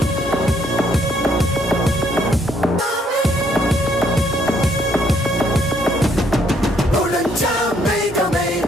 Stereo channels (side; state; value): both; normal; correlation 0.69